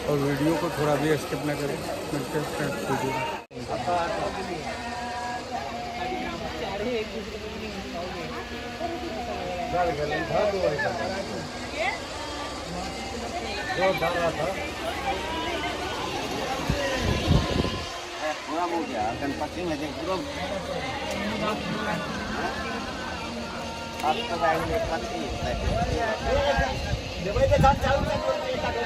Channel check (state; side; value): identical; both; correlation 1.00